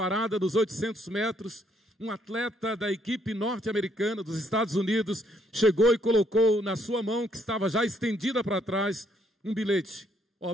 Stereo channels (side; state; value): both; normal; correlation 0.70